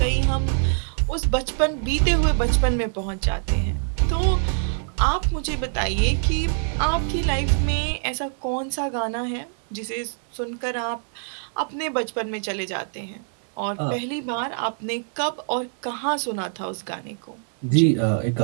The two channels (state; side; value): silent; left; 62 dB below the other